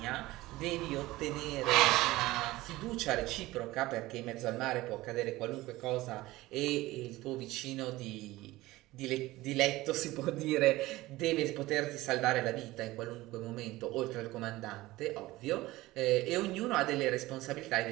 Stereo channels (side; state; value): left; quieter; 18.4 dB